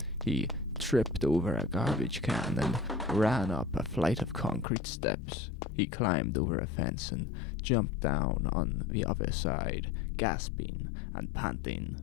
He tripped over a garbage can and ran up a flight of concrete steps. He climbed over a fence and jumped down on the other side, gasping and panting.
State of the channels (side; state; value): right; drops out; at 4.7 s